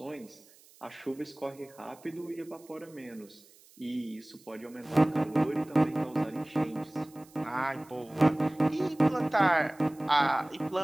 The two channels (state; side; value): noise; right; hiss, 26 dB below the sound